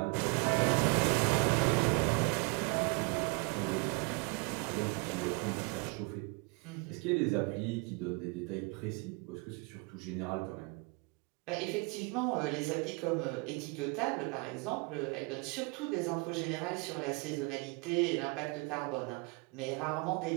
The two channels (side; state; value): left; quieter; 29.7 dB